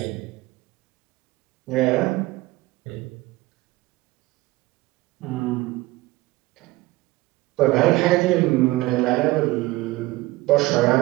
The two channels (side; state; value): left; quieter; 19.7 dB